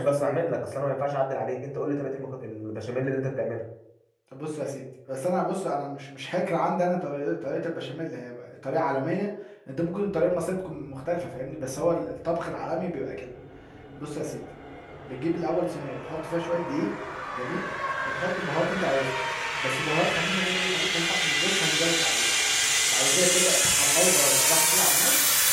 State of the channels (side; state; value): both; identical; correlation 1.00